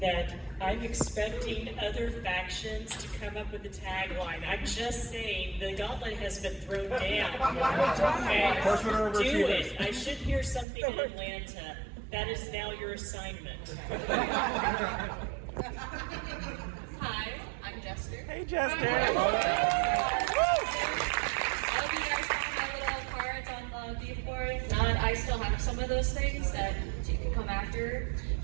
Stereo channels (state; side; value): drops out; left; at 10.7 s